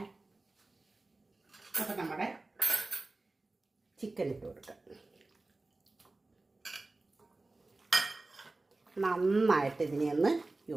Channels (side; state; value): left; quieter; 3.2 dB